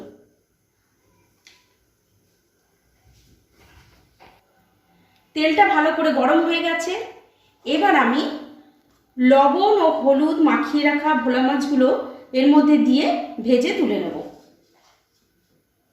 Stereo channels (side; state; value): both; identical; correlation 1.00